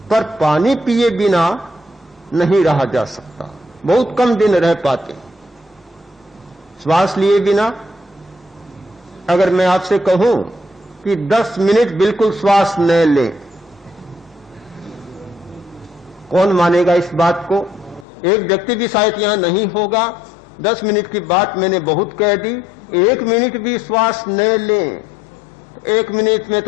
पर पानी पिए बिना नहीं रहा जा सकता, बहुत कम दिन रह पाते। श्वास लिए बिना अगर मैं आपसे कहूं कि 10 मिनट बिल्कुल श्वास न लें, कौन मानेगा इस बात को? एक व्यक्ति भी शायद यहां नहीं होगा। 10 मिनट की बात मैंने बहुत कह दी। 1 मिनट भी श्वास न लें, 1 मिनट में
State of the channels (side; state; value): right; drops out; at 18.1 s